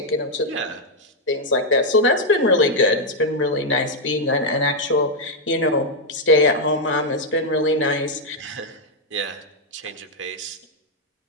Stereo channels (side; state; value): both; normal; correlation 0.00